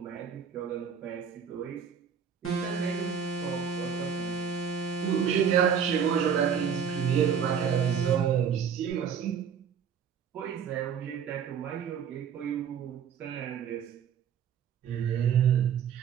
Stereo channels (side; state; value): left; quieter; 7.4 dB